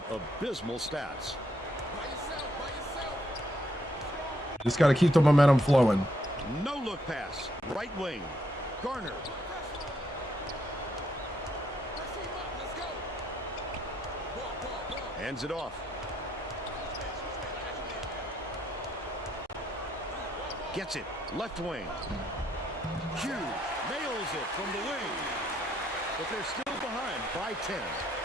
abysmal stats. Just got to keep the momentum flowing. No look pass. Right wing. Garner. Hands it off. Gets it. Left wing. Hughes nails it from the wing. But they're still behind by 10.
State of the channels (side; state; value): both; normal; correlation 0.73